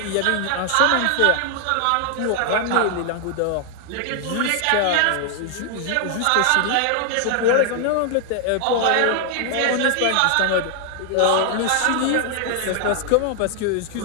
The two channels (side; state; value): both; different; correlation 0.00